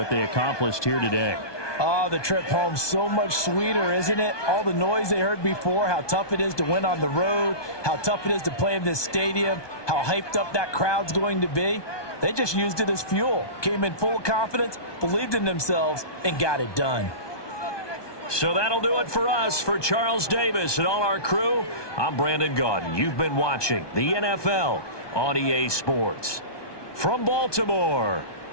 they accomplished here today. Oh, the trip home so much sweeter, isn't it? All the noise they heard before, how tough it is to win on the road, how tough it is to play in this stadium, how hyped up that crowd's going to be. They just used it as fuel, came in full of confidence, believed in themselves, and got it done. So that'll do it for us. For Charles Davis and all our crew, I'm Brandon Gaudin. You've been watching the NFL on EA Sports. From Baltimore,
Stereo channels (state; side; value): late; right; 1.2 ms